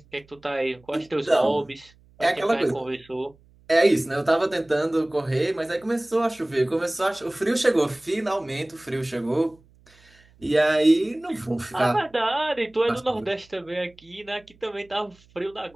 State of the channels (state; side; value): noise; right; hum, 29 dB below the sound